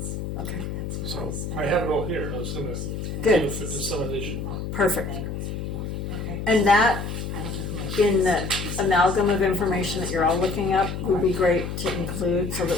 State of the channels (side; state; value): left; noise; hum, 5 dB below the sound